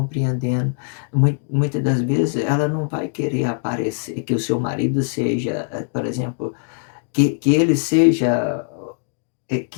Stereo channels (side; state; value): right; silent; digital silence